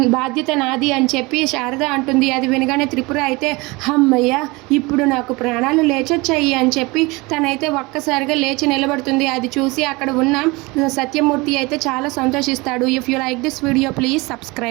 బాధ్యత నాది అని చెప్పి శారద అంటుంది. అది వినగానే త్రిపుర అయితే అమ్మయ్య, ఇప్పుడు నాకు ప్రాణాలు లేచొచ్చాయి అని చెప్పి తనైతే ఒక్కసారిగా లేచి నిలబడుతుంది. అది చూసి అక్కడ ఉన్న సత్యమూర్తి అయితే చాలా సంతోషిస్తాడు. If you like this video please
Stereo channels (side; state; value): left; quieter; 24.3 dB